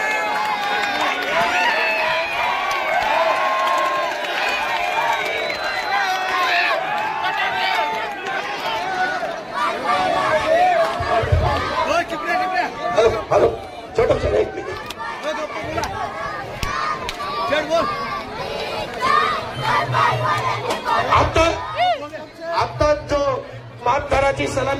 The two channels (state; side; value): identical; both; correlation 1.00